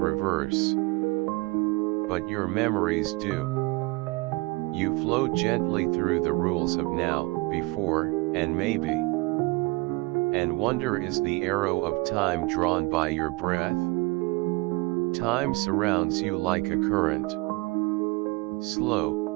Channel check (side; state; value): left; quieter; 24.5 dB